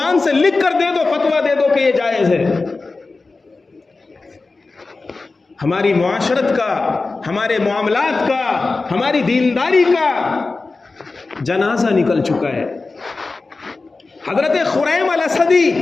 سے لکھ کر دے دو، فتویٰ دے دو کہ یہ جائز ہے۔ ہماری معاشرت کا، ہمارے معاملات کا، ہماری دینداری کا جنازہ نکل چکا ہے۔ حضرت خریم الاسدی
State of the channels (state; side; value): quieter; right; 3.7 dB